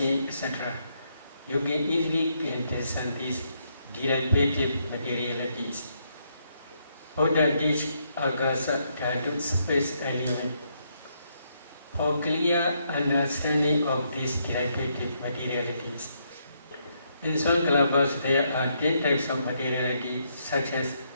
etc. You can easily discern these derivative materialities. Buddha teach agasa dhatu space element. For clear understanding of these derivative materialities. In some kalapas there are 10 types of materiality such as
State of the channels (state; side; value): inverted; both; correlation -0.76